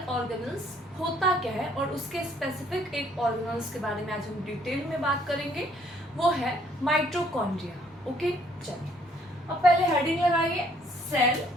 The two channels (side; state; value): both; normal; correlation 0.64